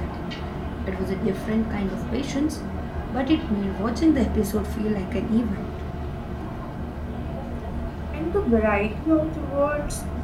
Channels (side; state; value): both; identical; correlation 1.00